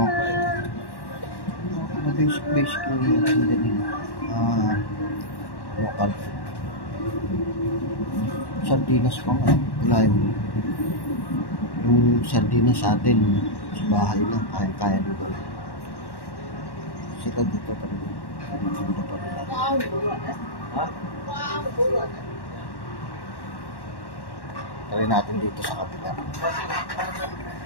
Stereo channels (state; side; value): late; right; 1.1 ms